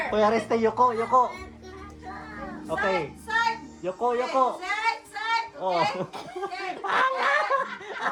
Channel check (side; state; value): both; identical; correlation 1.00